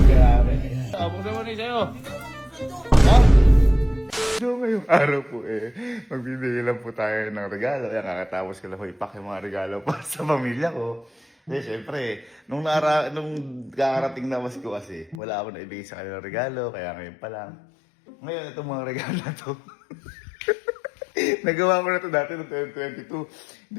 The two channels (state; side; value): drops out; right; at 15.2 s